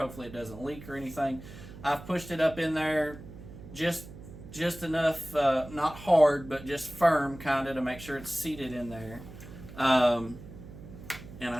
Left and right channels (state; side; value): noise; right; hum, 15 dB below the sound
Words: it doesn't leak or anything. I've pushed it up in there just enough, not hard, but just firm kind of to make sure it's seated in there. And I